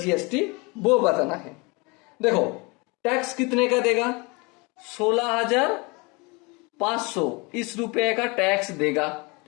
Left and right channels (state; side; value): quieter; right; 27.7 dB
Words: वो बताना है। देखो टैक्स कितने का देगा, 16,500 इस रुपए का टैक्स देगा।